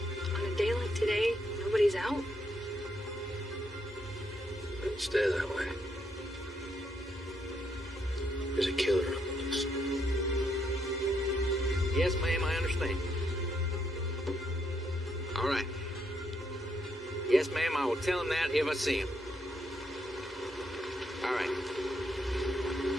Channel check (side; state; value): both; normal; correlation 0.77